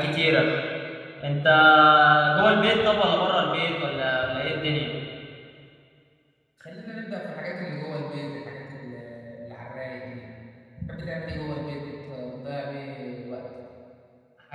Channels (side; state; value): both; identical; correlation 1.00